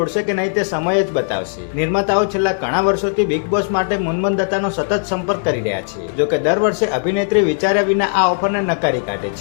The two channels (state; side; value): silent; right; digital silence